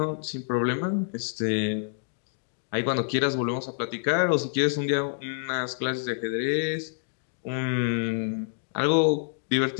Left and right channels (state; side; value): silent; right; digital silence